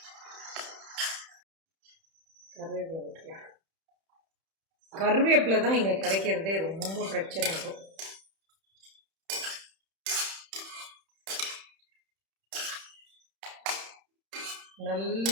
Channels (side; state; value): left; late; 31 ms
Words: கருவேப்பிலை போட்டுக்கலாம். கருவேப்பிலை தான் இங்கே கிடைக்கிறதே ரொம்ப பிரச்சனை இருக்கும்.